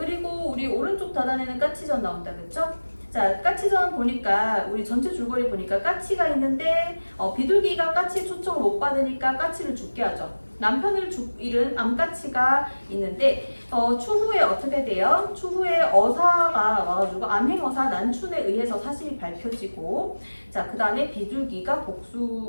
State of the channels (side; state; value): both; inverted; correlation -1.00